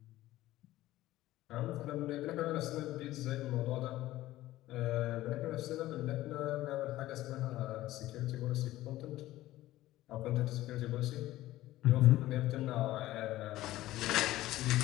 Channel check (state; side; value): quieter; right; 15.8 dB